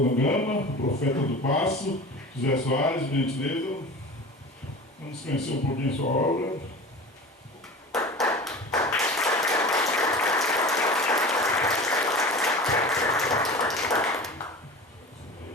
o Profeta do Passo, José Soares, gentileza. Vamos conhecer um pouquinho a sua obra.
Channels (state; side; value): normal; both; correlation 0.34